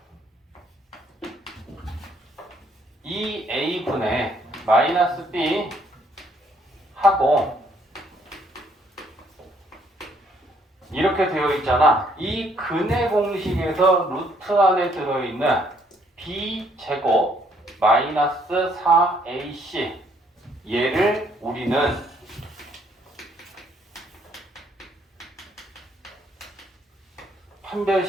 2a분의 마이너스 b 하고 이렇게 되어 있잖아. 이 근의 공식에서 루트 안에 들어있는 b제곱 마이너스 4ac 얘를 우리는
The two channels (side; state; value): both; normal; correlation 0.67